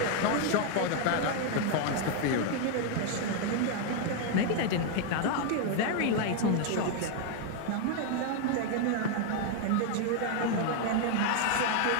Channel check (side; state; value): both; different; correlation 0.00